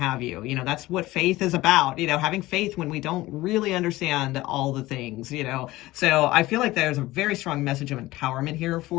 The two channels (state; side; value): quieter; right; 18.2 dB